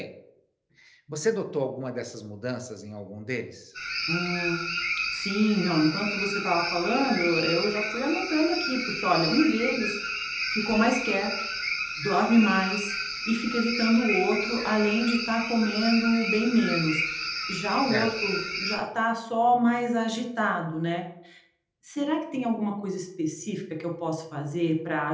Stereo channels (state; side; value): identical; both; correlation 1.00